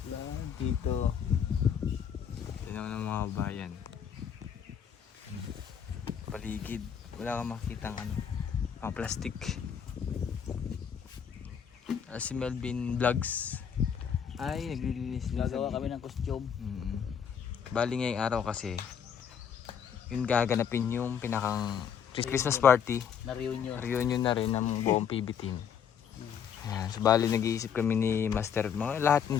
Plantito. Tignan mo ng mga bayan. Paligid. Wala kang makitang mga plastic. Si Melvin Vlogs ay naglilinis din Gagawa kami ng costume. Bali ngayong araw kasi yun gaganapin yung pinakang Christmas party. Na reunion. Reunion na rin ng buong PB team. Ayan, so bali nag-iisip kami ni Master. Lahat ng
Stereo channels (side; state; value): right; quieter; 7.8 dB